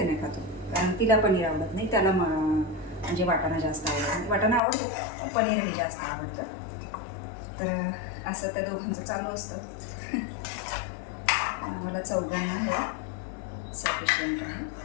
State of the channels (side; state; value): right; drops out; at 4.6 s